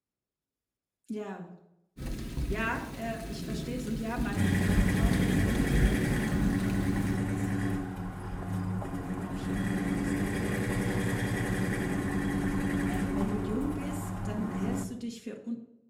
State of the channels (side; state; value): both; identical; correlation 1.00